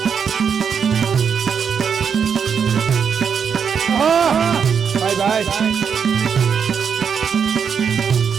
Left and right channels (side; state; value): left; quieter; 6.9 dB